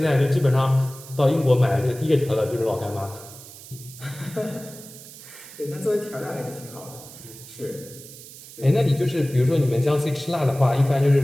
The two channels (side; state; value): right; noise; hiss, 17 dB below the sound